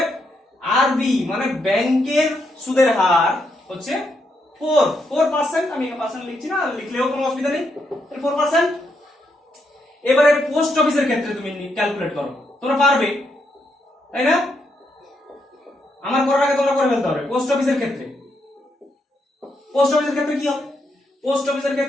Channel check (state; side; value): normal; both; correlation 0.79